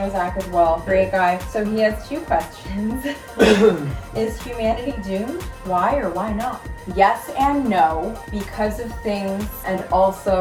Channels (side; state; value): both; identical; correlation 1.00